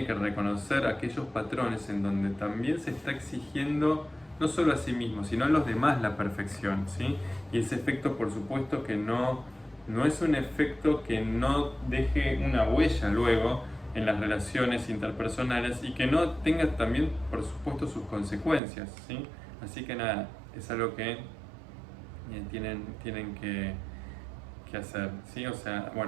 que reconocer aquellos patrones en donde también se está exigiendo no solo a sí mismo, sino a los demás la perfección, ¿sí? Y ese efecto, por supuesto, que no es un efecto que no deje una huella luego en las relaciones interpersonales y que no tenga también, por supuesto, sus consecuencias, ¿sí? Así que nada, es algo que tienen que hacer, ¿sí? O sea,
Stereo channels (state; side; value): drops out; left; at 18.6 s